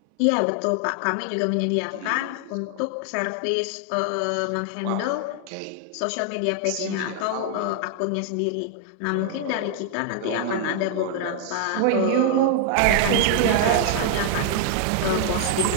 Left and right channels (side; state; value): both; different; correlation 0.00